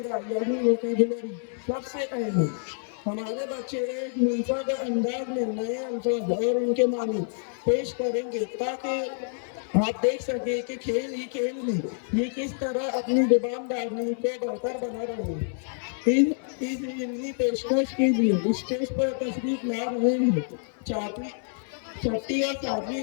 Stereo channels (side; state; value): right; silent; 60 dB below the other